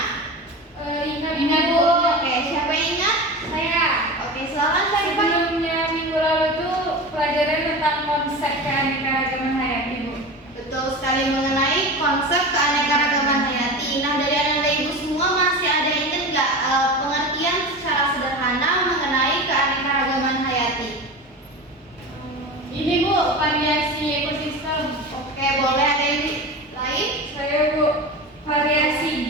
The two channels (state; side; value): normal; both; correlation 0.29